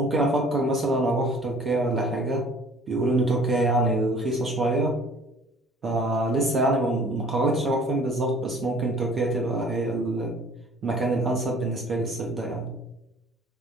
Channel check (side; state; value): both; normal; correlation 0.51